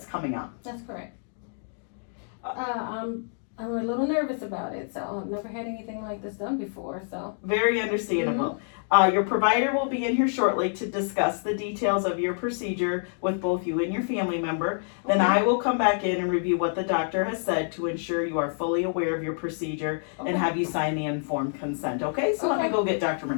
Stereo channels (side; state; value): right; silent; digital silence